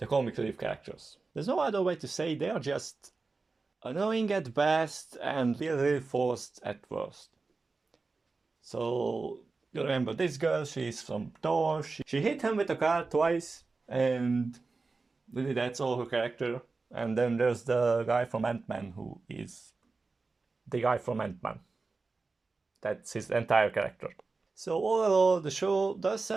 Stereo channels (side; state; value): left; quieter; 3.9 dB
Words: comic relief characters. There's no other way to say, they are just annoying at best and really forced at worst. So you remember this girl, she's from Thor, she hit him with a car twice, and really that's all her character. And then there's the guy from Ant-Man who is the guy from Ant-Man. That's his entire character. So overall, the show does